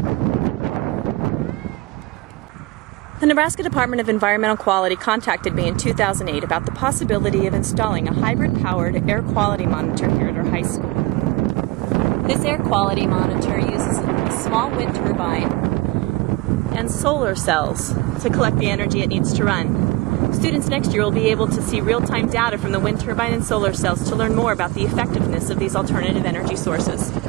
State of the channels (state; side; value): quieter; left; 20.5 dB